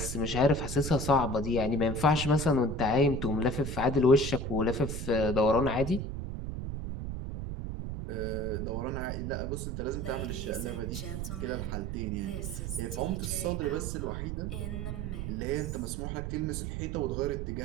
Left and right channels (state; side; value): noise; right; rumble, 4 dB below the sound